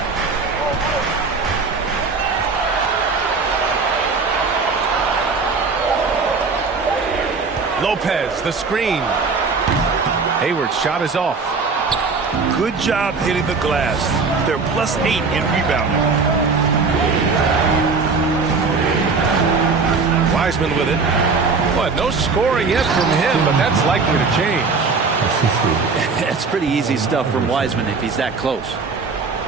Lopez, the screen. Hayward's shot is off. Good job hitting the glass. They're +8 in rebounding. Wiseman with it. But no scoring yet from him, but that's likely to change. It's pretty easy stuff from Wiseman if he's that close.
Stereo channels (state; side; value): quieter; left; 4.5 dB